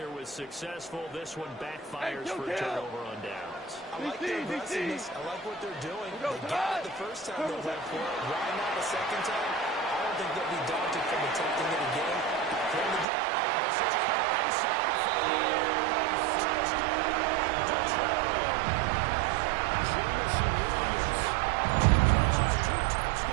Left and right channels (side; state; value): left; drops out; at 13.1 s